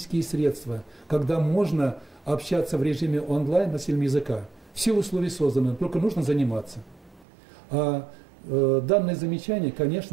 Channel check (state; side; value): drops out; left; at 7.2 s